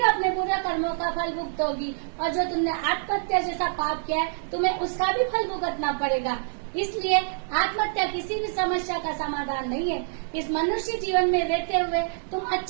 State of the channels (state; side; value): silent; left; digital silence